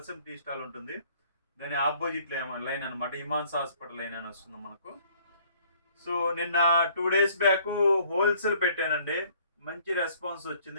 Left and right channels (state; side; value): inverted; both; correlation -0.59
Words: టీ స్టాల్ ఉంటుంది, దాని ఆపోజిట్ లైన్ అనమాట. హిమాంస హాస్పిటల్ లైన్ అని వస్తుంది మనకు. సో నిన్న 2 days బ్యాక్ హోల్సేల్ పెట్టానండి. మంచి రెస్పాన్స్